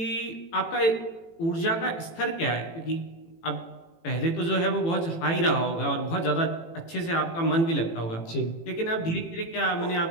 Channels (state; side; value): late; right; 18 ms